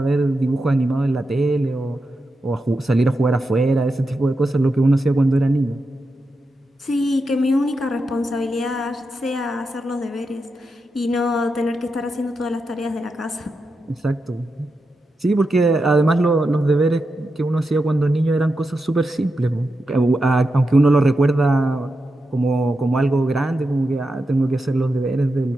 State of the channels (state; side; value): normal; both; correlation 0.88